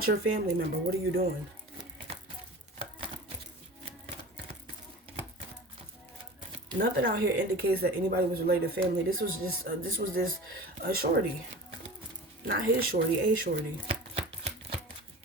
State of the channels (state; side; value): normal; both; correlation 0.36